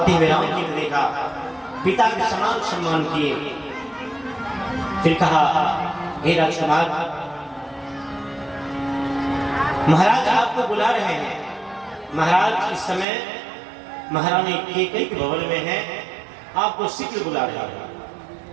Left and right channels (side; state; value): left; drops out; at 13.1 s